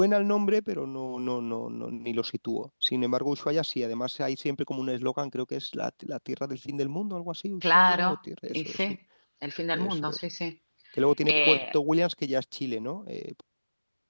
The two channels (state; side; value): inverted; both; correlation -1.00